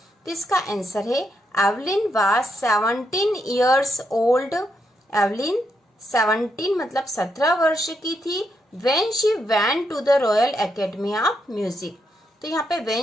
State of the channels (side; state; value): both; normal; correlation 0.80